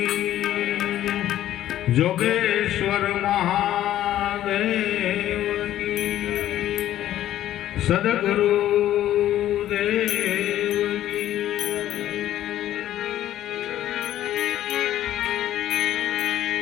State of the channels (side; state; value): right; quieter; 12.6 dB